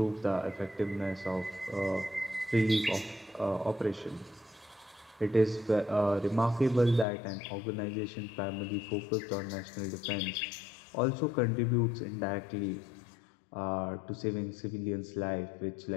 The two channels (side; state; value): right; drops out; at 7.1 s